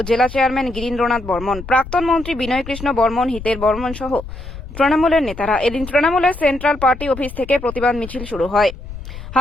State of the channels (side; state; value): left; noise; rumble, 12 dB below the sound